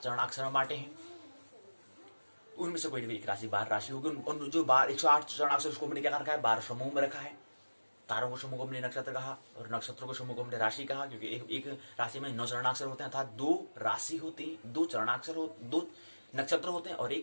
चरणाक्षर में बांटे हैं। उनमें से कोई एक राशि 12 राशि होगी। उन जो 108 चरणाक्षर उसको हमने क्या रखा है, 12 समूह में रखा है। तारों को समूह को हमने नक्षत्र कहा और नक्षत्रों को समूह को हमने राशि कहा, क्योंकि एक राशि में 9 चरणाक्षर होते हैं, अर्थात 2 राशि होती है, 2 चरणाक्षर 2 नक्षत्र होते हैं और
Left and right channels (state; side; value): inverted; both; correlation -1.00